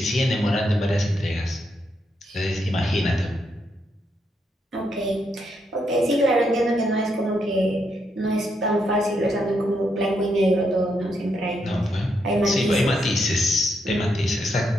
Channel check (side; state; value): both; normal; correlation 0.79